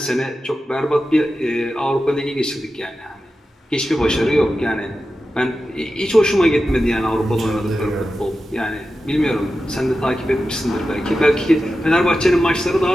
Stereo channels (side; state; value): both; normal; correlation 0.92